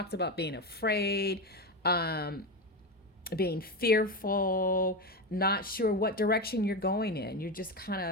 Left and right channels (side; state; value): both; normal; correlation 0.16